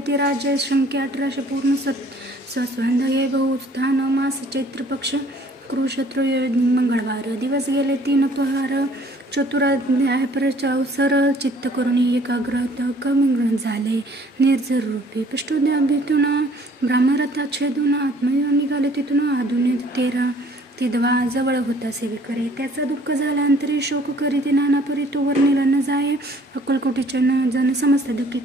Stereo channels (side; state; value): both; normal; correlation 0.57